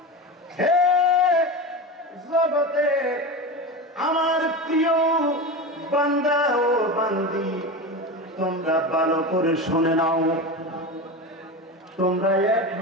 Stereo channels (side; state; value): both; normal; correlation 0.24